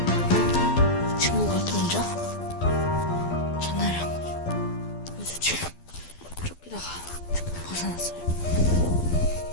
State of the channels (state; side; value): late; right; 12 ms